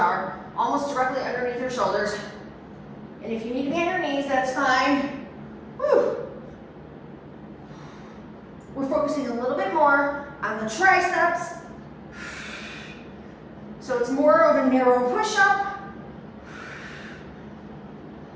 almost directly underneath your shoulders. And if you need to be on your knees, that's fine. Whew. We're focusing a little bit more on the triceps. So it's more of a narrow push-up.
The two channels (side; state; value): both; identical; correlation 1.00